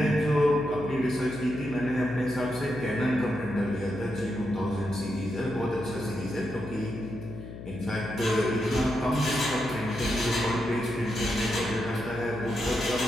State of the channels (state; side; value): noise; left; hum, 11 dB below the sound